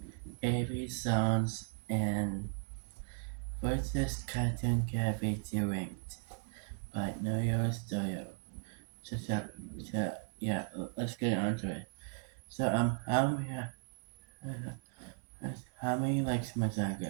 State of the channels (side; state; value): left; silent; digital silence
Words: AB songs and versus Cartoon Cat featuring by Know Your Studio. So, yeah, let's get on to it. So, how many likes my song